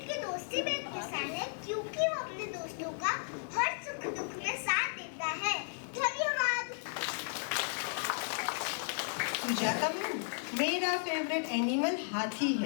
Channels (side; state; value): right; silent; 55 dB below the other